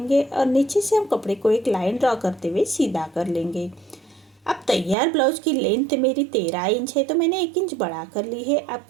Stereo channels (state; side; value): drops out; left; at 5.0 s